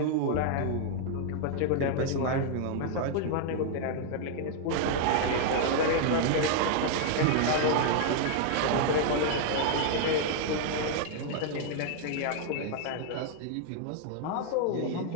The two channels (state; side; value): different; both; correlation 0.00